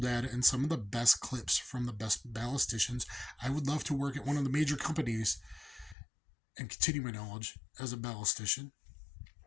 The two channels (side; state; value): right; drops out; at 6.0 s